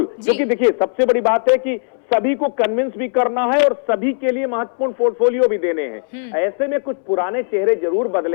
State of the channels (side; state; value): right; silent; 67 dB below the other